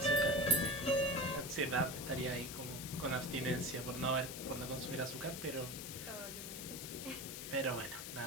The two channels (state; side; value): noise; left; hiss, 8 dB below the sound